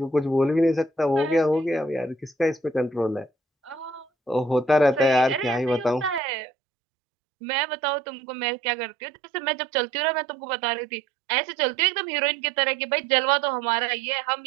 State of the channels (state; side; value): drops out; left; at 6.2 s